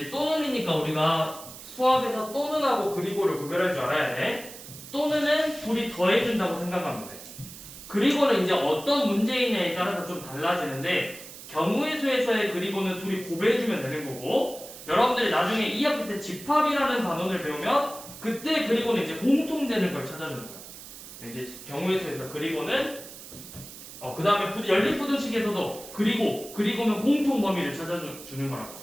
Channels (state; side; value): noise; right; hiss, 15 dB below the sound